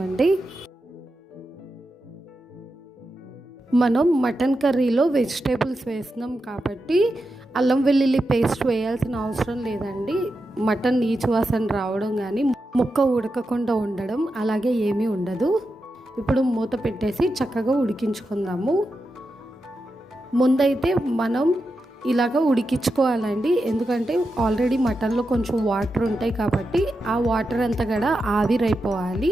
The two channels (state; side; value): normal; both; correlation 0.88